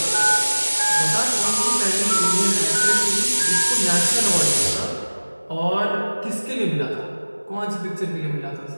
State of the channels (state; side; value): inverted; both; correlation -1.00